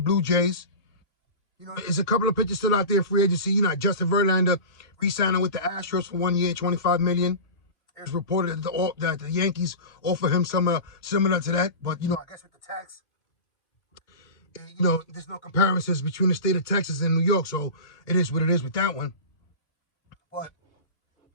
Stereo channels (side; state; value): right; late; 2.2 ms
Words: Jays. You know, there's a couple of pitchers still out there in free agency. You know, Justin Verlander re-signing with the Astros for 1 year, $25 million. It's reported that the Yankees offer him some similar to that. But, you know, I guess with the tax, you know, there's no comparisons between the state of Texas and New York. So it is what it is with that one. But